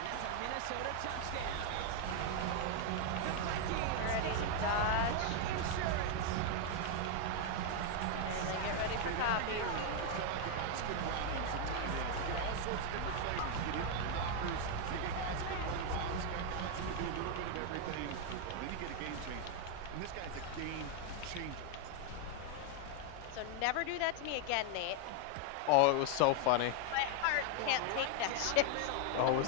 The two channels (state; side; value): different; both; correlation 0.00